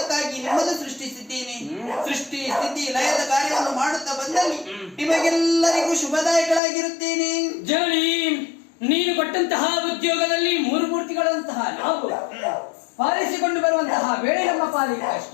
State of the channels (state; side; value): drops out; right; at 6.6 s